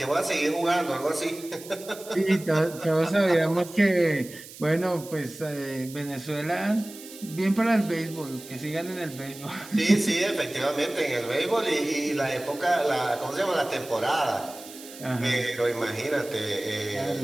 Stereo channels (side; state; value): right; noise; hiss, 16 dB below the sound